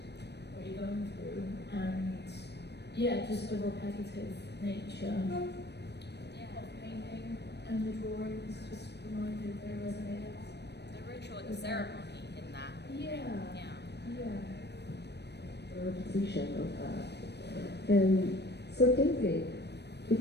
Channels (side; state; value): right; late; 0.49 ms